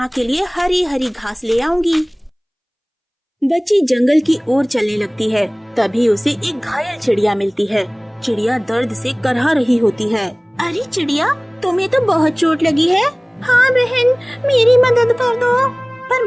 के लिए हरी हरी घास ले आऊंगी। बच्ची जंगल की ओर चलने लगती है। तभी उसे एक घायल चिड़िया मिलती है। चिड़िया दर्द से करहा रही होती है। अरे चिड़िया, तुम्हें तो बहुत चोट लगी है। हाँ बहन, मेरी मदद कर दो। पर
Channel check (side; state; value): both; identical; correlation 1.00